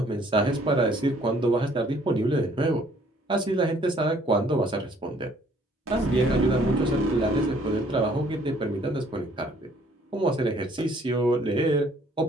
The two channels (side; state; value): both; normal; correlation 0.61